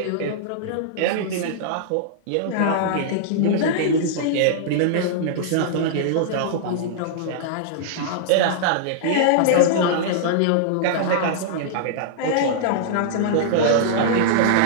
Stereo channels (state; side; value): different; both; correlation -0.02